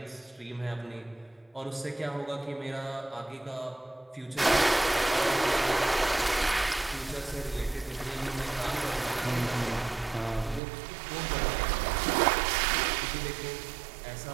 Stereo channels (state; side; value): drops out; left; at 10.6 s